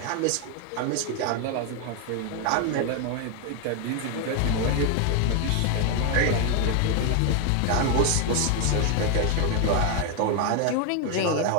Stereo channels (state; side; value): different; both; correlation 0.01